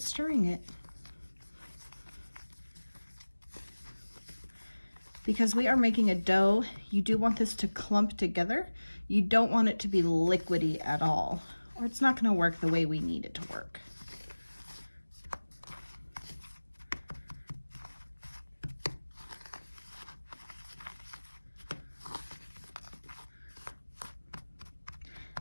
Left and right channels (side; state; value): both; inverted; correlation -1.00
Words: stirring it. Because we are making a dough, you do want this to clump together. You don't want it to be liquidy at all, or it's not going to work the way we need it to work.